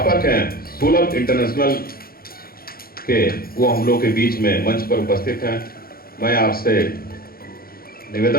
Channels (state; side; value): late; right; 0.43 ms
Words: हैं सुलभ इंटरनेशनल के, वो हम लोग के बीच में मंच पर उपस्थित हैं। मैं आपसे